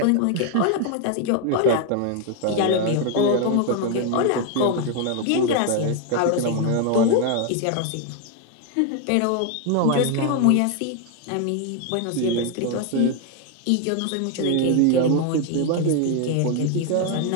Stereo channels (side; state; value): both; different; correlation 0.01